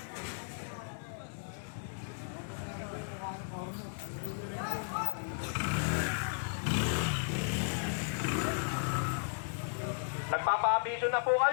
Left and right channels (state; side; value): silent; right; digital silence